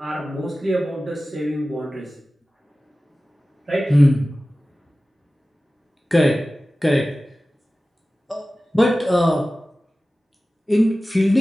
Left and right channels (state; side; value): normal; both; correlation 0.96